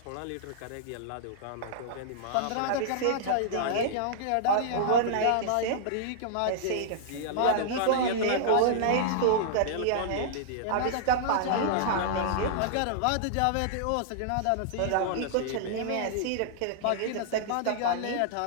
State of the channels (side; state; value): both; different; correlation -0.02